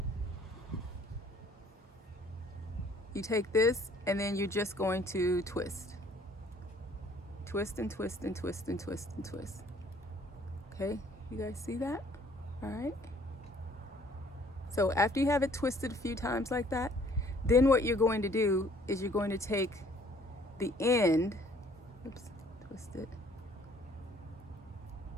you take this and then you're just going to twist. Twist and twist and twist and twist and twist. Okay, you guys see that? All right. So after you have it twisted a few times like that, then what you're going to do is you're going to take the end, oops, twist it.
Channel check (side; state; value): both; normal; correlation 0.59